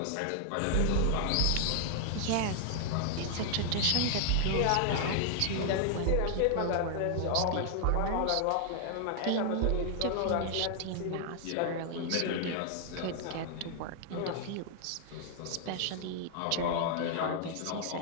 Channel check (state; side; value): different; both; correlation 0.00